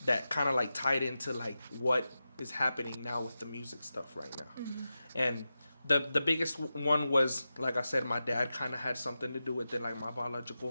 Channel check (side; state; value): both; inverted; correlation -0.92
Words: that kind of like tied into like what is happening now with the music stuff right now. And the biggest one was, like I said, my dad kind of had something to do with it, like my